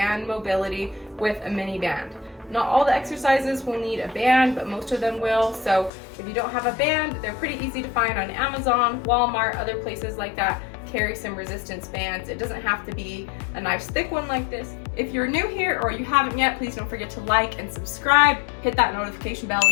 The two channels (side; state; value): right; drops out; at 5.9 s